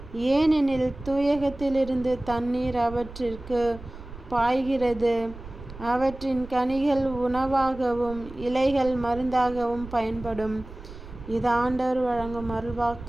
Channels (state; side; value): noise; right; rumble, 14 dB below the sound